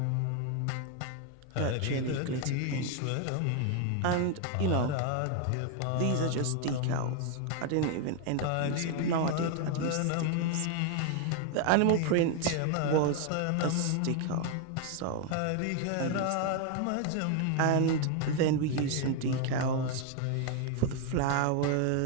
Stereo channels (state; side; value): different; both; correlation 0.01